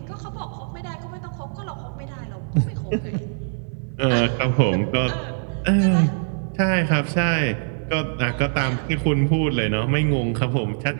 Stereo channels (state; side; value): silent; left; 60 dB below the other